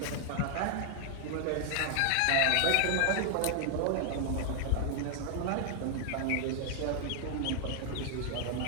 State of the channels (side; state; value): both; different; correlation 0.00